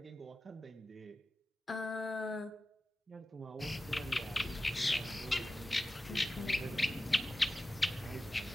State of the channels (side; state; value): both; normal; correlation 0.94